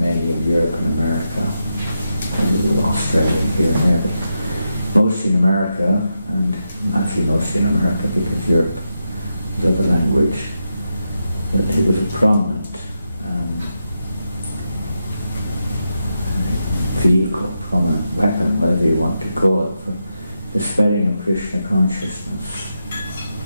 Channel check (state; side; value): inverted; both; correlation -0.86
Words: in Europe and America, and Australia here and there. Mostly in America, and actually mostly in America because Europe is other language, but it was a prominent vehicle, prominent weapon, whatever you want to call it, for the spreading of Krishna consciousness.